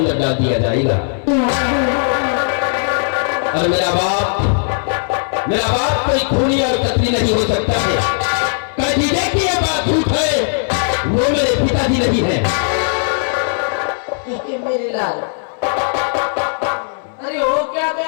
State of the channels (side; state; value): right; silent; 62 dB below the other